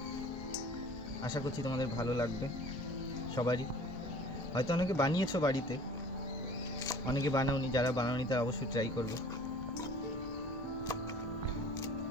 আশা করছি তোমাদের ভালো লাগবে সবারই। হয়তো অনেকে বানিয়েছো বাড়িতে, অনেকে বানাওনি, যারা বানাওনি তারা অবশ্যই ট্রাই করবে।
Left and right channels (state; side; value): normal; both; correlation 0.47